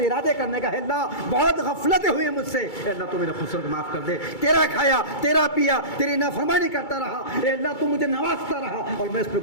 ارادے کرنے کا ہے. اللہ بہت غفلتیں ہوئی مجھ سے، اے اللہ تو میرے قصور کو معاف کر دے. تیرا کھایا، تیرا پیا، تیری نافرمانی کرتا رہا، اے اللہ تو مجھے نوازتا رہا اور میں اس پہ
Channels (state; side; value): late; right; 2.3 ms